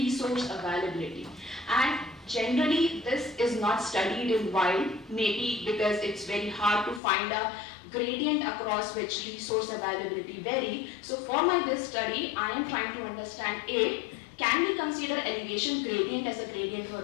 availability. And generally, this is not studied in wild, maybe because it's very hard to find a gradient across which resource availability vary. So for this study, I am trying to understand A, can we consider elevation gradient as a gradient for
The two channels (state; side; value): drops out; right; at 7.0 s